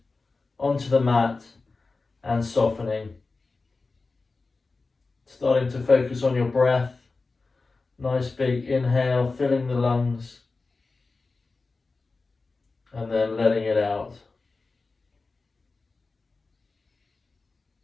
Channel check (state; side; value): quieter; right; 3.8 dB